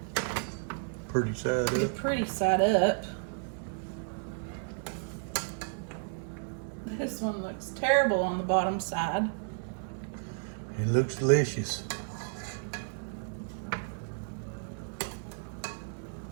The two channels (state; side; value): silent; left; 56 dB below the other